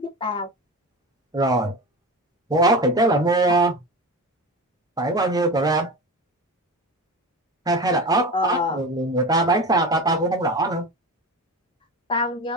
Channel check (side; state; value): both; normal; correlation 0.28